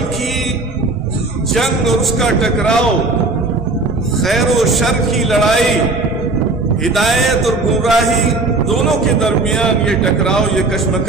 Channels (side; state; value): left; quieter; 3.3 dB